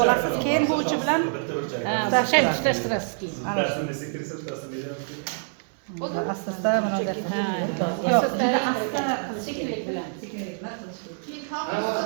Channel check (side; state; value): left; silent; digital silence